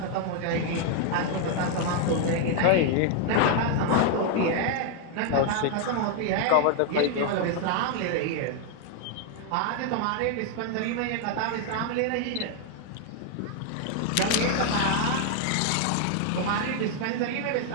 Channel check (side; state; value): both; different; correlation 0.00